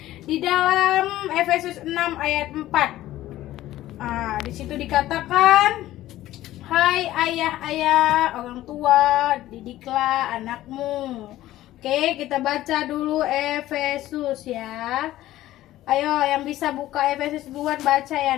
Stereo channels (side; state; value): right; quieter; 14.9 dB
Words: Di dalam Efesus 6 ayat 4. Di situ dikatakan, "Hai ayah-ayah, orang tua, didiklah anakmu." Oke, kita baca dulu Efesus ya. Ayo, yang bisa buka Efesus duluan baca ya